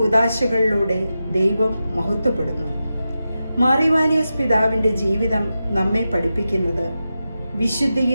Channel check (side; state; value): both; inverted; correlation -0.91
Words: ദൈവം മഹത്വപ്പെടുന്നു. മാർ ഇവാനിയോസ് പിതാവിന്റെ ജീവിതം നമ്മെ പഠിപ്പിക്കുന്നത്